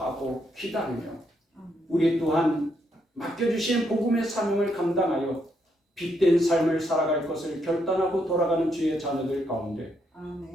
기다리며 우리 또한 맡겨주신 복음의 사명을 감당하여 빛된 삶을 살아갈 것을 결단하고 돌아가는 주의 자녀들 가운데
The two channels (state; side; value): normal; both; correlation 0.77